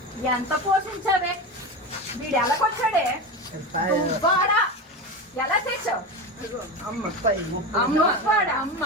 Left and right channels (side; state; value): both; normal; correlation 0.22